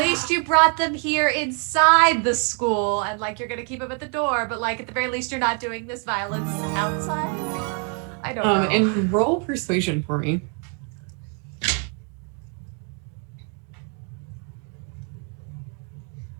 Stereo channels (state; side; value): quieter; left; 39.5 dB